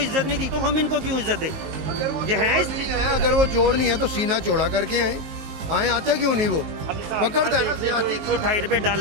नहीं दी तो हम इनको क्यों इज्जत दें। ये है इसलिए, अगर वो चोर नहीं है तो सीना चौड़ा करके आए आते क्यों नहीं, वो पकड़ता है ना। 128 रुपये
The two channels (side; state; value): left; late; 19 ms